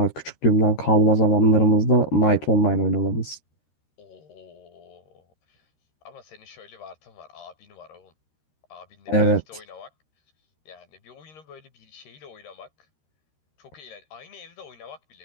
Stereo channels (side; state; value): right; late; 13 ms